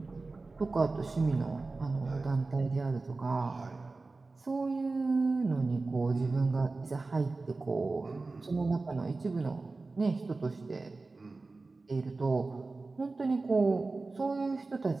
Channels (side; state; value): left; quieter; 3.6 dB